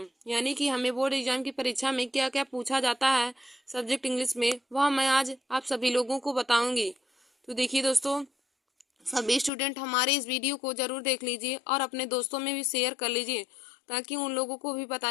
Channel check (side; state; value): right; drops out; at 9.5 s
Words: यानी कि हमें बोर्ड एग्जाम की परीक्षा में क्या क्या पूछा जाता है सब्जेक्ट इंग्लिश में, वह मैं आज आप सभी लोगों को बताऊँगी। तो देखिए दोस्तों, सभी स्टूडेंट हमारे इस वीडियो को जरूर देख लीजिए और अपने दोस्तों में भी शेयर कर लीजिए, ताकि उन लोगों को भी